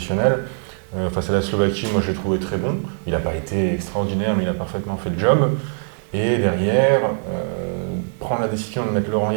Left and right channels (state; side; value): silent; left; digital silence